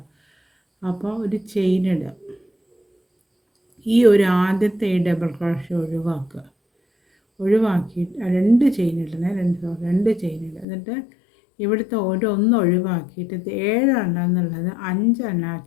അപ്പോൾ ഒരു ചെയിനിടുക, ഈ ഒരു ആദ്യത്തെ ഈ ഡബിൾ ക്രോഷ്യ ഒഴിവാക്കിയിട്ട് 2 ചെയിനിടണേ, 2 ചെയിനിടുക. എന്നിട്ട് ഇവിടുത്തെ ഒന്ന് ഒഴിവാക്കിയിട്ട് 7 എണ്ണം എന്നുള്ളത് 5 എണ്ണം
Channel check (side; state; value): right; drops out; at 10.7 s